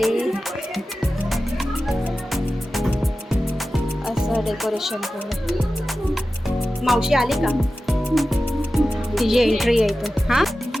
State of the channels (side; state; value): both; normal; correlation 0.94